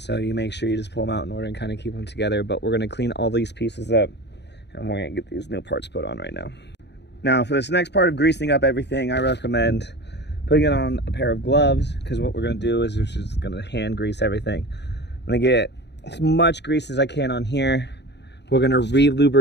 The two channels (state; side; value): late; right; 0.50 ms